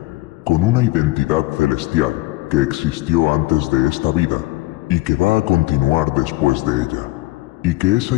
con una identidad celestial que existió antes de esta vida y que va a continuar después de ella, y que esa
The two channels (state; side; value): quieter; right; 20.2 dB